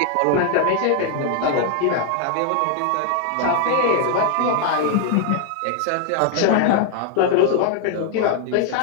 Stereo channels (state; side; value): different; both; correlation 0.00